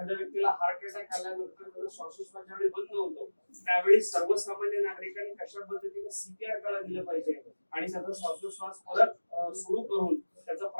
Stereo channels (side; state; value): both; inverted; correlation -1.00